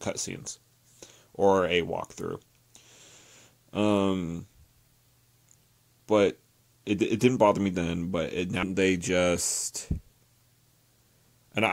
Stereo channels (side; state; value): both; identical; correlation 1.00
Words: or a walkthrough. But it didn't bother me then, but now they just... And